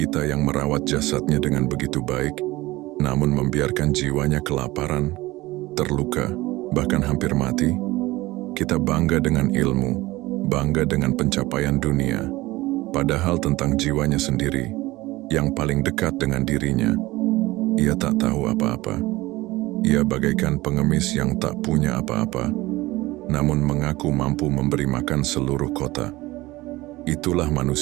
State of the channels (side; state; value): left; quieter; 19.4 dB